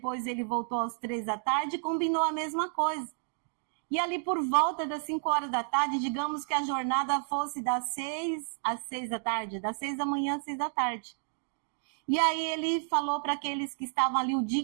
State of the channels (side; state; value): left; silent; 57 dB below the other